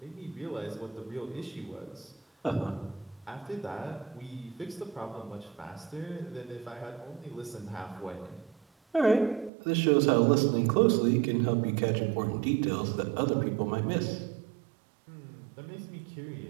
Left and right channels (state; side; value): drops out; left; at 9.5 s